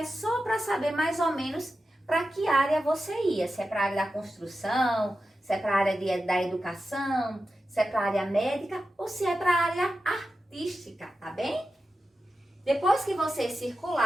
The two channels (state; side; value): normal; both; correlation 0.91